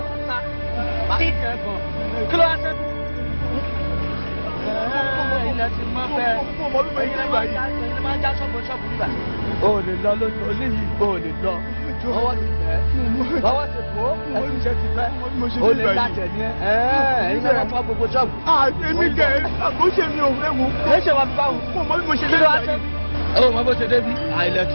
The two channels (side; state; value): both; inverted; correlation -1.00